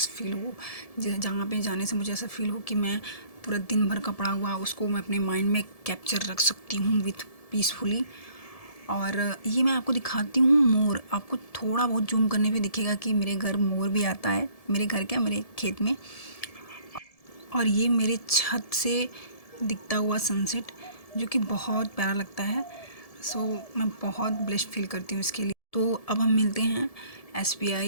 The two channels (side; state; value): right; late; 1.7 ms